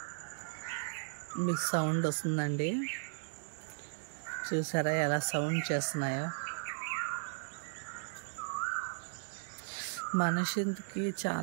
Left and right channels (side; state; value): left; silent; digital silence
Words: మీకు సౌండ్ వస్తుందండి. చూసారా ఎలా సౌండ్ చేస్తున్నాయో. మనిషికి